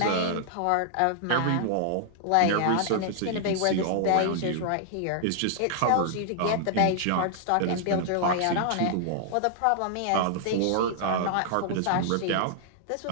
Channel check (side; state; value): both; different; correlation -0.01